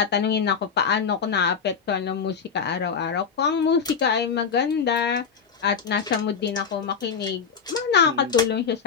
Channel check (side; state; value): right; quieter; 6.2 dB